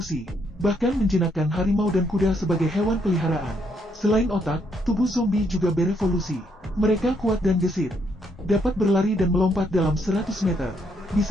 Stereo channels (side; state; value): both; normal; correlation 0.74